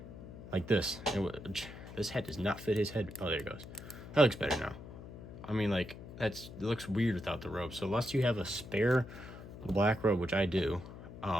Like this. This head does not fit his head. Oh, there it goes. That looks better now. I mean, like, it looks weird without the robe. So unless you have a spare black robe, which I do,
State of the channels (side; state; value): left; noise; hum, 14 dB below the sound